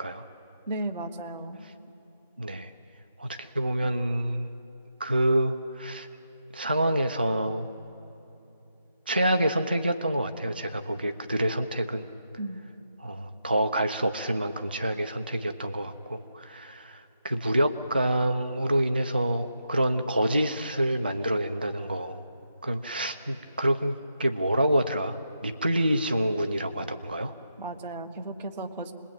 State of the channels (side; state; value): both; inverted; correlation -0.83